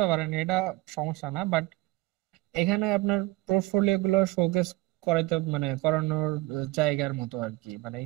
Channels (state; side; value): quieter; left; 20.1 dB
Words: পারেন, এটা সমস্যা না। বাট এখানে আপনার পোর্টফোলিও গুলো শোকেস করাইতে মানে করানোর জায়গার মতো আর কি। মানে